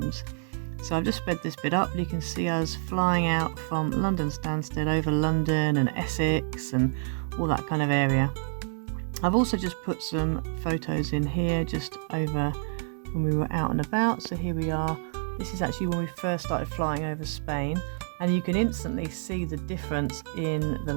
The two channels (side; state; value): left; silent; digital silence